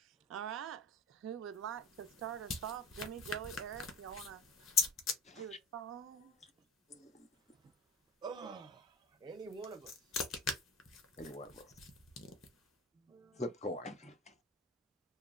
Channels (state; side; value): normal; both; correlation 0.32